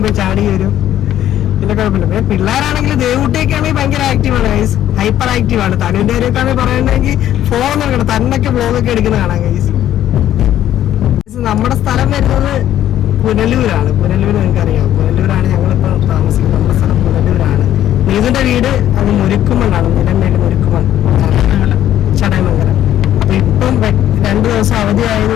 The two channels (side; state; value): right; quieter; 11.9 dB